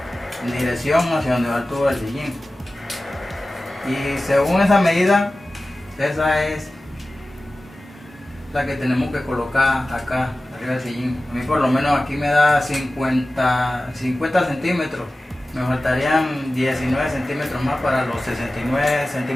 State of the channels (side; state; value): both; normal; correlation 0.96